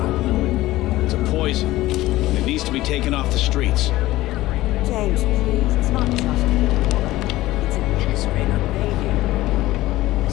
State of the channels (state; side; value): quieter; right; 16.9 dB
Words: It's a poison. And it needs to be taken off the streets. James, please. It's not just you. It's Administrator Bay here.